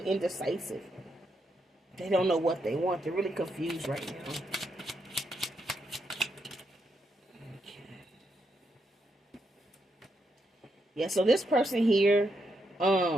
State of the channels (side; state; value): both; normal; correlation 0.80